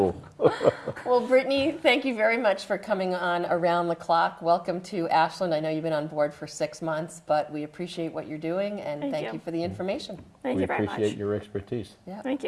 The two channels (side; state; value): both; identical; correlation 1.00